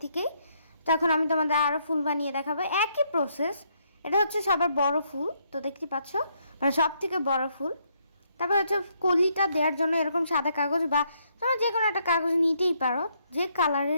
থেকেই। তো এখন আমি তোমাদের আরও ফুল বানিয়ে দেখাবো, একই প্রসেস। এটা হচ্ছে সবার বড় ফুল, তো দেখতে পাচ্ছ মানে সব থেকে বড় ফুল। তারপর হচ্ছে কলিটা দেওয়ার জন্য এরকম সাদা কাগজ বা তোমরা যে কোনো একটা কাগজ নিতেই পারো, যে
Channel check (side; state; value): both; inverted; correlation -0.73